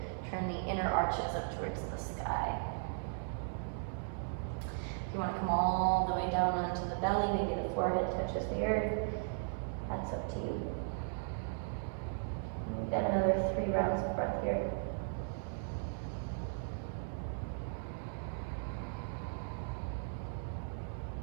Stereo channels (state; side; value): silent; left; 53 dB below the other